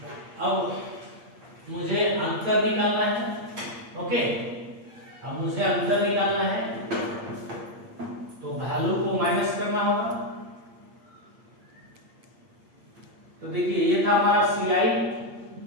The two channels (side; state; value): left; late; 8.6 ms